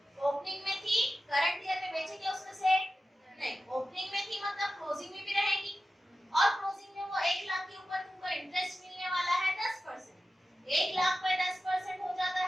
ओपनिंग में थी, करंट ईयर में बेचेंगे उसमें से नहीं, ओपनिंग में थी मतलब क्लोजिंग में भी रहेगी, और क्लोजिंग में वो 1 लाख के ऊपर तुमको इंटरेस्ट मिलने वाला है 10%, 1 लाख पे 10% हो जाता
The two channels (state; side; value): normal; both; correlation 0.94